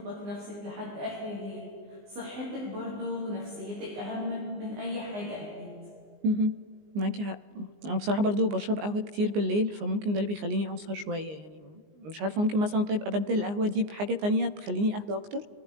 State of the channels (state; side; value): late; left; 19 ms